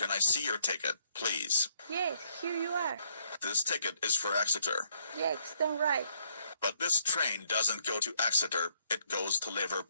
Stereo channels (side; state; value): both; inverted; correlation -0.70